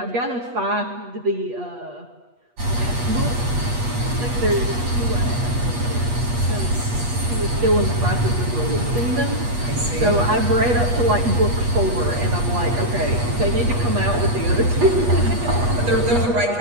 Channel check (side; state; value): left; late; 8.3 ms